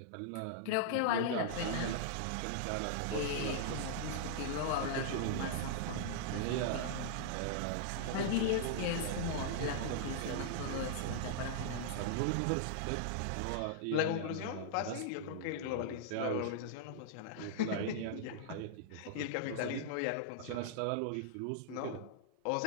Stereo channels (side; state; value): both; different; correlation -0.01